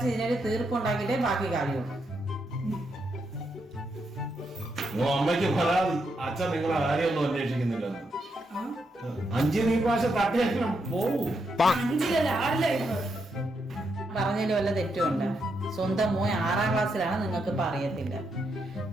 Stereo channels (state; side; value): normal; both; correlation 0.81